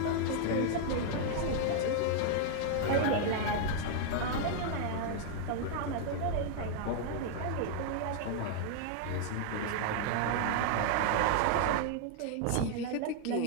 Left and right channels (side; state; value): both; different; correlation 0.00